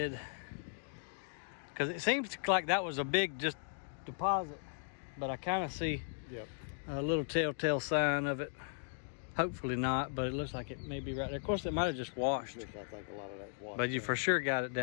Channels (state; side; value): silent; right; digital silence